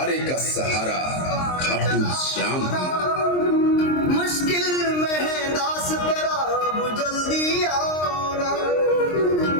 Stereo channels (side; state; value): right; late; 23 ms